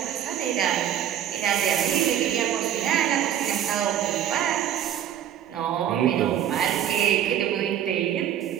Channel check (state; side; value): quieter; left; 10.3 dB